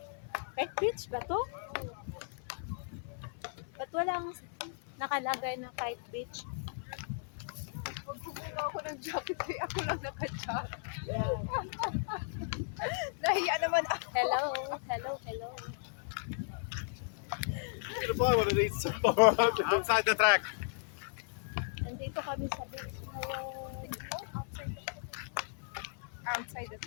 Kite Beach ba to? Ba't walang nakalagay na Kite Beach? Magbubuno ako ng jacket eh. Ako lang naka-jacket. Yan. Nahiya naman ako. Hello, hello, hello. I'm gonna buy one of these tomorrow outside the track. Nandito kami sa beach ngayon. Outside the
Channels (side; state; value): right; silent; 54 dB below the other